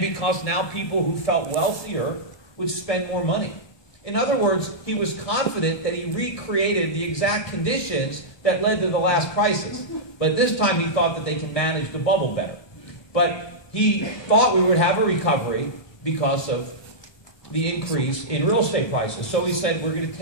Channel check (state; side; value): late; right; 1.2 ms